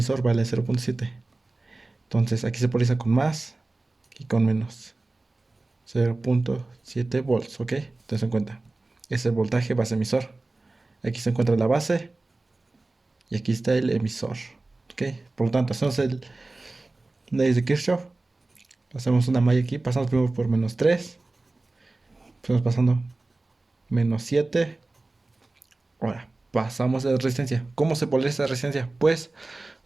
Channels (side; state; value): left; quieter; 3.1 dB